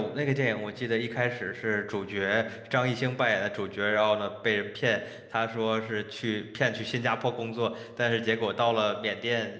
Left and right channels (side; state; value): both; identical; correlation 1.00